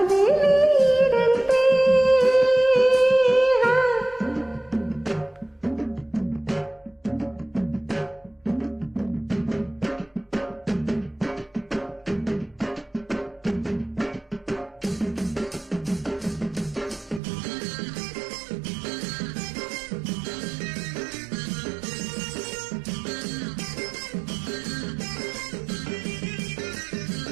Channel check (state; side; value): drops out; left; at 17.2 s